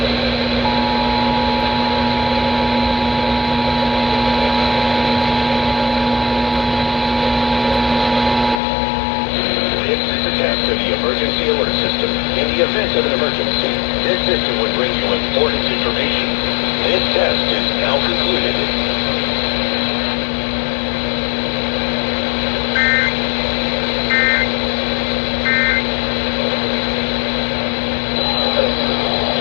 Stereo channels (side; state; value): right; drops out; at 8.6 s